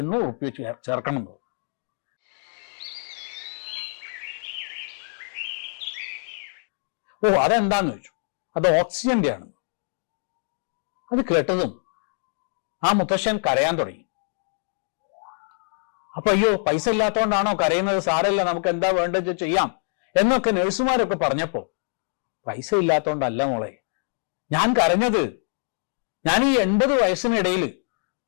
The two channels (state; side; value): silent; right; digital silence